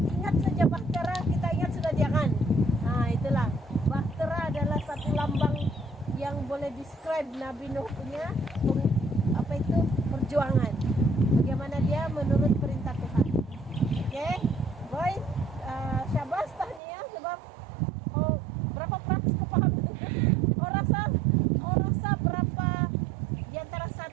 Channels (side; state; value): left; drops out; at 16.8 s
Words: saja bahtera, kita ingat sudah dia kan? Nah, itulah. Bahtera adalah satu lambang yang boleh describe Nabi Nuh punya perjuangan. Bagaimana dia menurut perintah Tuhan. Oke, boy, syabas tahniah sebab berapa praksi kau paham? Rasa berapa di antara